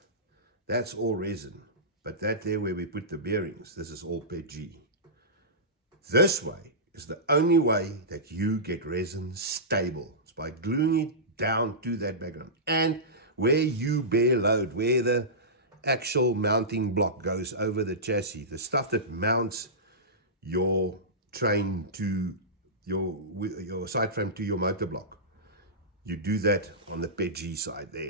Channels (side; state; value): both; normal; correlation -0.17